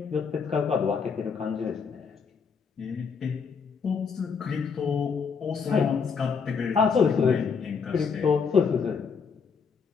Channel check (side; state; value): right; quieter; 5.8 dB